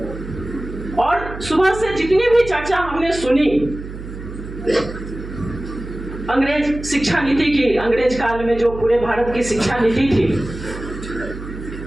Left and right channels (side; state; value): right; noise; hum, 11 dB below the sound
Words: और सुबह से जितनी भी चर्चा हमने सुनी अंग्रेज शिक्षा नीति की, अंग्रेज काल में जो पूरे भारत की शिक्षा नीति थी,